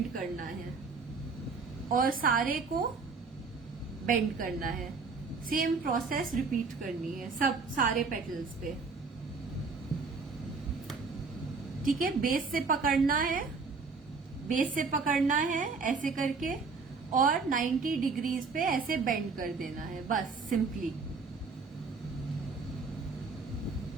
करना है और सारे को bend करना है. सेम प्रोसेस रिपीट करनी है सब सारे पेटल्स पे. ठीक है, बेस से पकड़ना है ऐसे करके, और 90 डिग्रीज पे ऐसे बेंड कर देना है, बस सिंपली.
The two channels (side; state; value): left; quieter; 4.6 dB